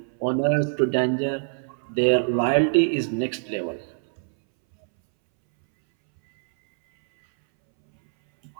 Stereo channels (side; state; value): left; silent; 63 dB below the other